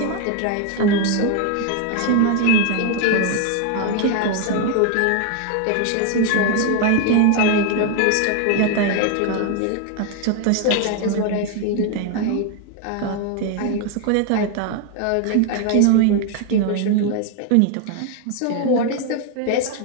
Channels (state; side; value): different; both; correlation 0.01